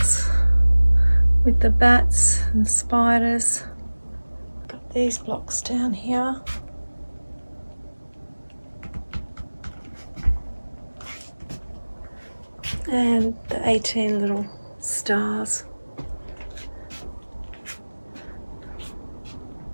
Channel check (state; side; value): inverted; both; correlation -1.00